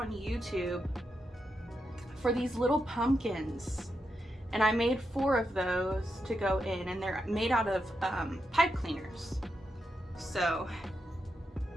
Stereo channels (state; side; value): normal; both; correlation 0.85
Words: YouTube for these little pumpkins, and I made 4 of those to go in, and they're made out of pipe cleaners, so